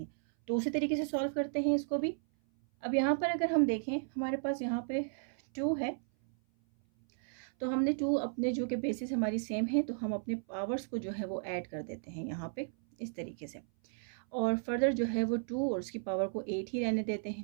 तो उसी तरीके से सॉल्व करते हैं इसको भी। अब यहाँ पर अगर हम देखें हमारे पास यहाँ पे 2 है, तो हमने 2 अपने जो कि बेसिस हमारी सेम है तो हम अपने पावर्स को जो है वो ऐड कर देते हैं यहाँ पे इस तरीके से। और फर्दर जो है वो 2 और उसकी पावर को 8 ही रहने देते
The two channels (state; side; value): silent; left; 55 dB below the other